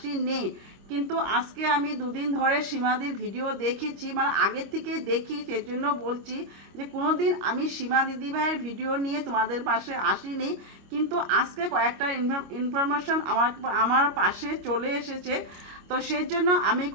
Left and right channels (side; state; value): left; late; 25 ms